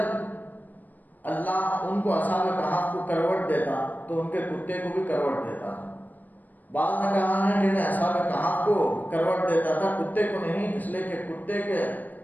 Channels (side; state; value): right; late; 0.084 ms